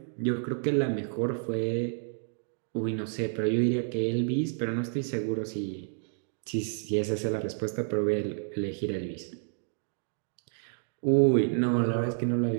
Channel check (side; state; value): left; silent; digital silence